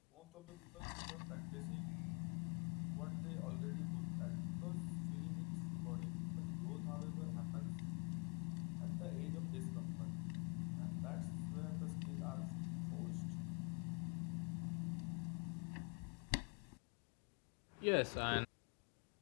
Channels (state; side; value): quieter; right; 34.3 dB